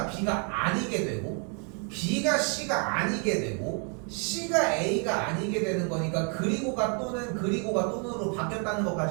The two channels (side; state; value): left; quieter; 38.5 dB